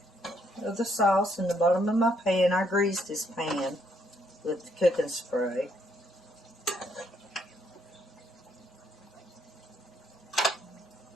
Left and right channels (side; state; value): both; normal; correlation 0.71